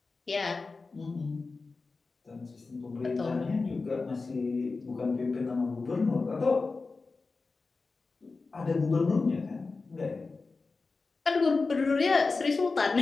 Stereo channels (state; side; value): quieter; right; 4.0 dB